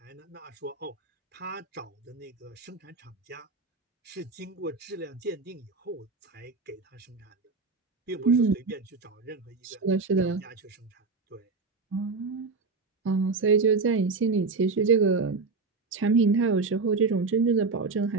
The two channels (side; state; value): left; quieter; 4.3 dB